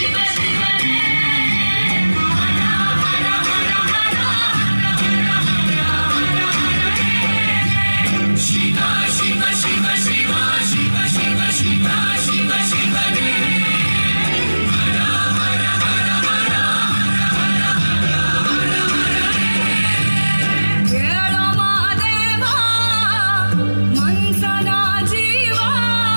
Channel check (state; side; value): inverted; both; correlation -1.00